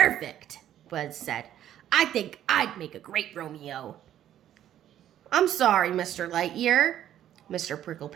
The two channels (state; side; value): quieter; left; 11.4 dB